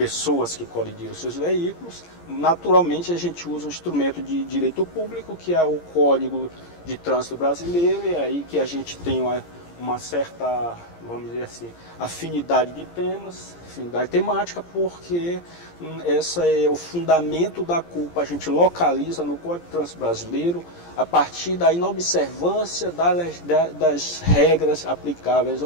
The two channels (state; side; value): late; right; 17 ms